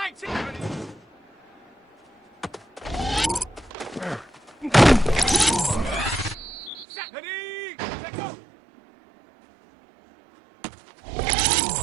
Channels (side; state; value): left; drops out; at 6.9 s